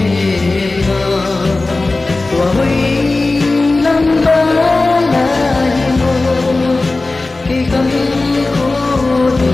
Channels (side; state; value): right; quieter; 3.3 dB